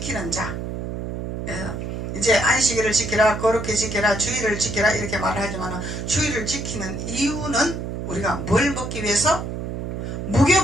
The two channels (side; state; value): right; noise; hum, 5 dB below the sound